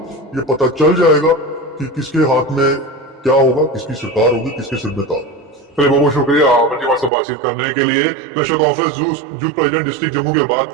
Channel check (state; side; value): drops out; left; at 7.1 s